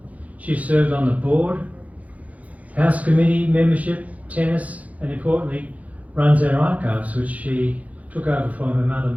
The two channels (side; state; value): left; late; 0.070 ms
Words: She's served on the board, House Committee membership, tennis, and importantly, runs our archives, which she took over from her mother